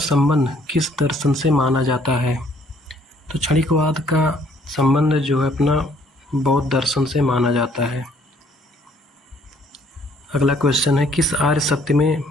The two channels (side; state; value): both; normal; correlation 0.63